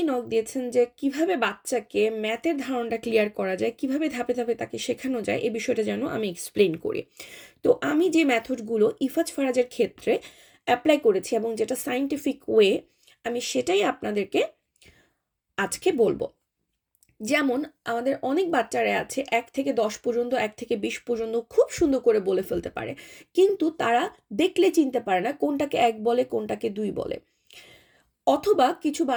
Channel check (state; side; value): identical; both; correlation 1.00